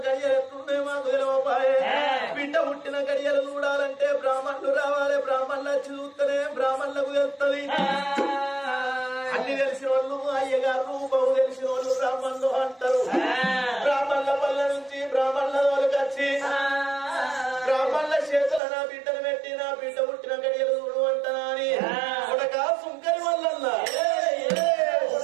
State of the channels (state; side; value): drops out; left; at 18.6 s